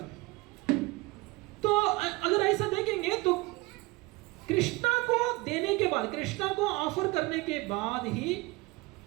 तो अगर ऐसा देखेंगे तो कृष्णा को देने के बाद, कृष्णा को ऑफर करने के बाद ही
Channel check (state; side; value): quieter; left; 22.8 dB